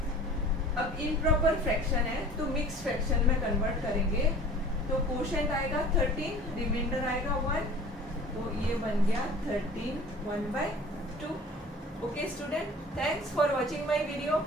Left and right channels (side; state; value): both; normal; correlation 0.44